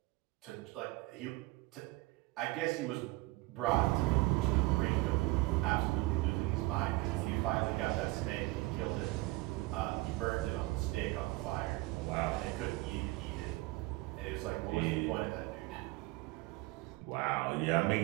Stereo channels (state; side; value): quieter; left; 21.7 dB